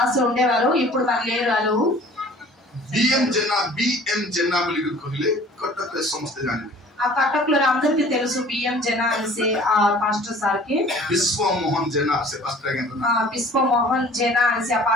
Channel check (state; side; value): normal; both; correlation 0.49